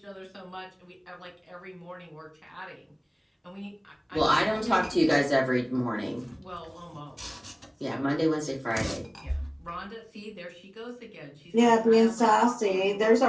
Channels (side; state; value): both; identical; correlation 1.00